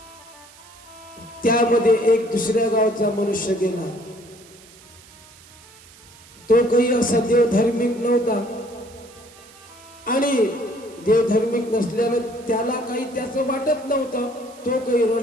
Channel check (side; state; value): right; noise; hiss, 23 dB below the sound